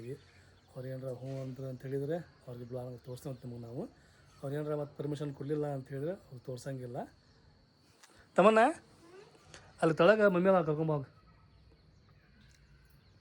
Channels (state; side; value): identical; both; correlation 1.00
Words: ಅವ್ರು ಏನಾರ ಹ್ಞೂ ಅಂದ್ರೆ ಅಂತ ಹೇಳಿದರೆ ಅವ್ರಿಗೆ ಬ್ಲಾಗ್ ತೋರಿಸ್ತೀವಿ ನಿಮಗೆ ನಾವು ಅವ್ರು ಏನಾರ ಮತ್ತೆ ಪರ್ಮಿಷನ್ ಕೊಡಲಿಲ್ಲ ಅಂತ ಹೇಳಿದ್ರೆ ಅವ್ರು ತೋರ್ಸಂಗಿಲ್ಲ ತಮ್ಮನ್ನ ಅಲ್ಲಿ ತಳಗ ಮಮ್ಮಿ ಅಲ್ಲ ಕರ್ಕೊಂಬೋಗ